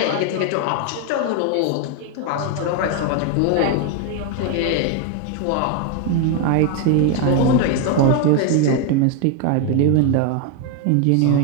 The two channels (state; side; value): different; both; correlation 0.01